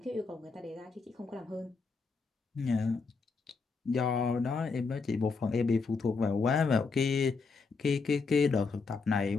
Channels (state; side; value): quieter; right; 4.6 dB